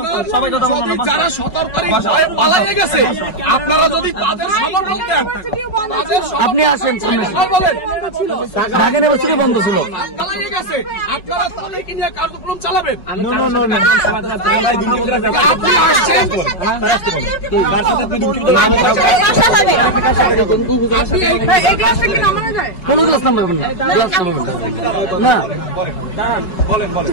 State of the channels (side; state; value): right; late; 5.4 ms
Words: সবাই কথা বলুন। যারা সতর্কতার ভয়ে পালিয়ে গেছে, আপনারা যদি তাদের খবর বলতেন। আপনি আসেন সামনে, ঢাকা ইউনিভার্সিটি বন্ধ ছিল, পালিয়ে গেছে, আপনারা তাদেরকে নিয়ে কার্যক্রম চালাবেন। কোন ক্লাস নাম্বার না,